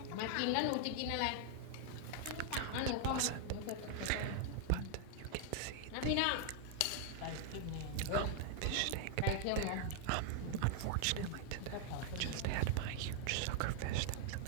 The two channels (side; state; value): both; different; correlation 0.00